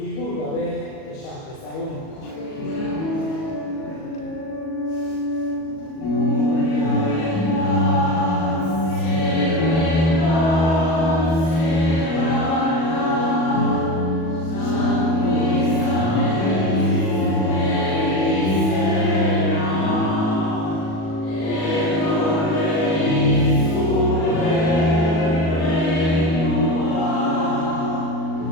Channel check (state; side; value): late; right; 37 ms